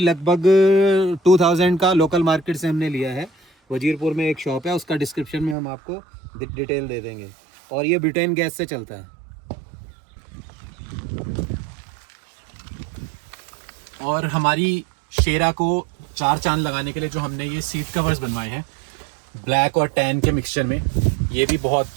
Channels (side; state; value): left; drops out; at 5.6 s